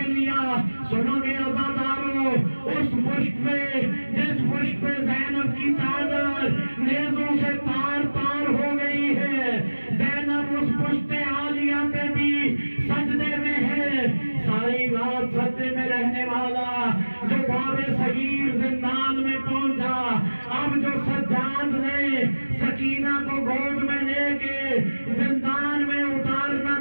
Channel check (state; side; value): inverted; both; correlation -1.00